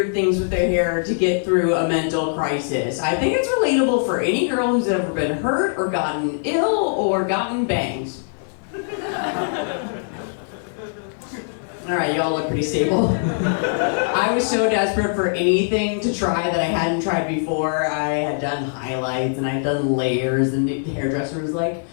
things with their hair to get through a mental crisis. I think it's relatable for any girl who's ever been hurt or gotten ill or gotten bangs. All right, y'all look pretty stable. I was so desperate for anything to try that I hadn't tried before. I had done highlights and I'd done layers, and the hairdresser was like,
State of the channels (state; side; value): silent; right; digital silence